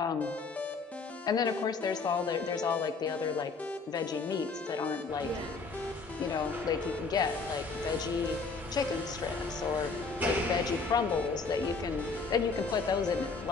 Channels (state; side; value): quieter; right; 4.4 dB